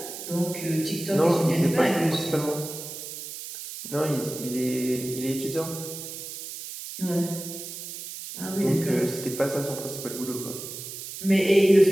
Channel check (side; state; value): right; noise; hiss, 10 dB below the sound